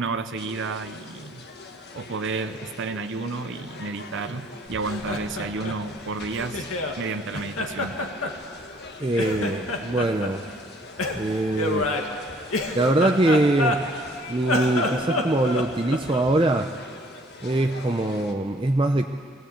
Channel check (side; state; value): both; normal; correlation 0.60